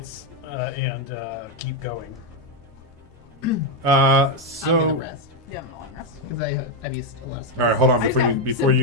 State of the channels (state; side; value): normal; both; correlation 0.04